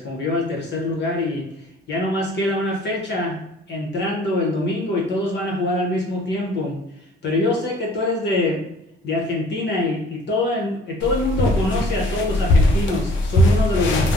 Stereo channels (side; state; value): both; normal; correlation 0.52